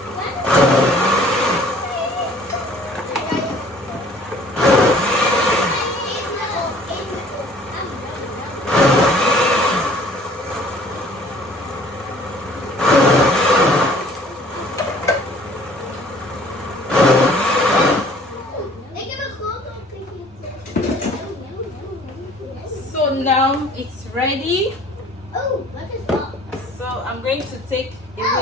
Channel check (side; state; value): both; normal; correlation 0.53